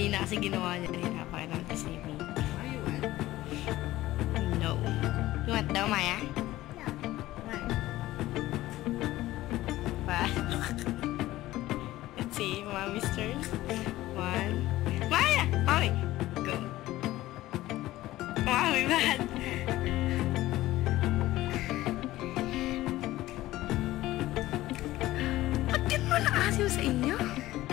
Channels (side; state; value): right; quieter; 16.3 dB